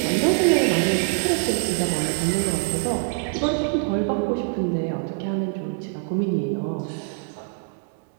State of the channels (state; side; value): quieter; left; 39.9 dB